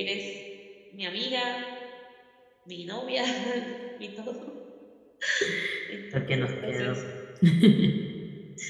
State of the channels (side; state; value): both; identical; correlation 1.00